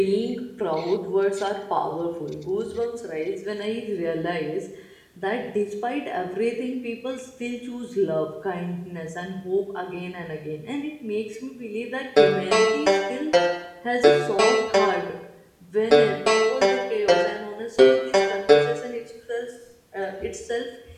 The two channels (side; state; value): both; identical; correlation 1.00